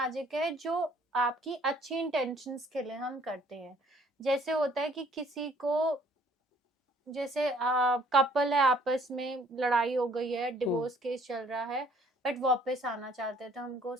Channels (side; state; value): both; normal; correlation 0.60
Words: है जो आपकी अच्छी इंटेंशंस के लिए हम करते हैं। जैसे होता है कि किसी को, जैसे कपल है, आपस में लड़ाई हो गई है, डिवोर्स केस चल रहा है, बट वापस आना चाहते हैं, तो हमको